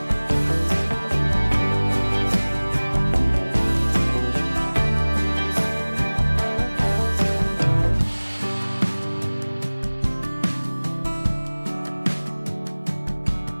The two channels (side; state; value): both; inverted; correlation -1.00